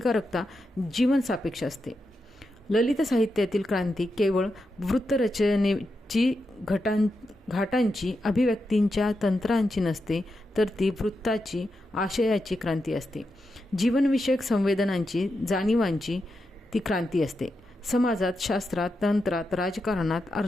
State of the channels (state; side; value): normal; both; correlation 0.87